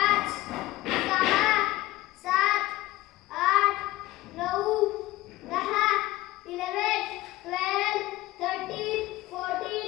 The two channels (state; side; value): quieter; right; 17.8 dB